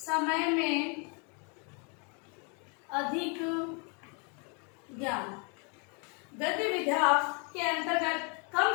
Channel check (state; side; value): quieter; right; 34.8 dB